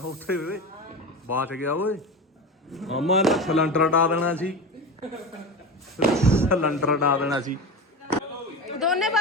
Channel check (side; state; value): both; normal; correlation 0.26